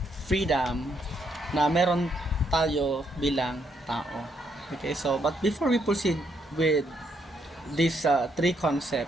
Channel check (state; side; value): normal; both; correlation 0.75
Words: freedom na meron tayo bilang tao. Okay, so but before we proceed with these three